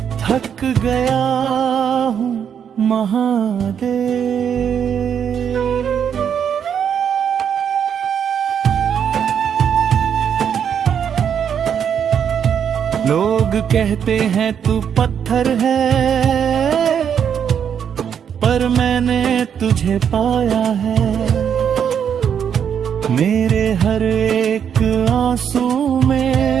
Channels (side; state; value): left; quieter; 8.1 dB